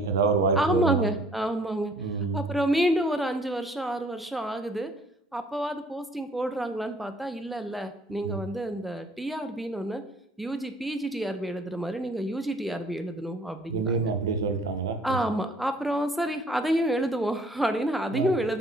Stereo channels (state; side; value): normal; both; correlation 0.58